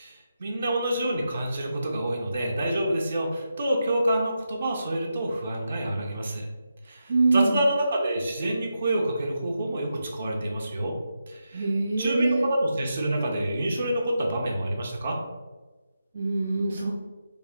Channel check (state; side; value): inverted; both; correlation -0.87